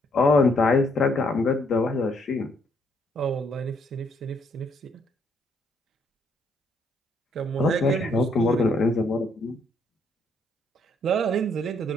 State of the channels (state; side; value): normal; both; correlation 0.70